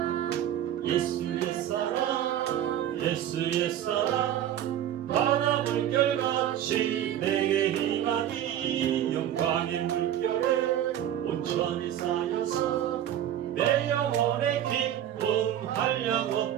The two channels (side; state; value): left; quieter; 11.1 dB